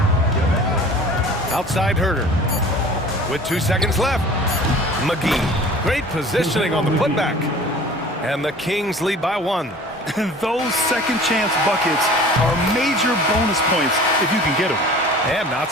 Outside Herter. With 2 seconds left. McGee. Great positioning on the putback. And the Kings lead by 1. And those second chance buckets are major bonus points if you can get them. And not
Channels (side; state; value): both; normal; correlation 0.44